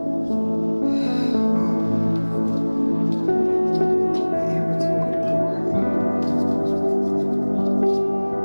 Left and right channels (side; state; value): both; inverted; correlation -1.00